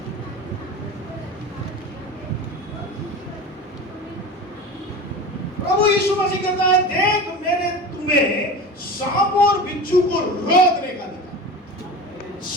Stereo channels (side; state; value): both; normal; correlation 0.31